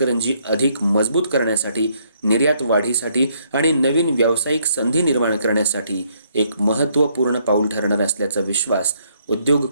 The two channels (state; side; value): inverted; both; correlation -0.70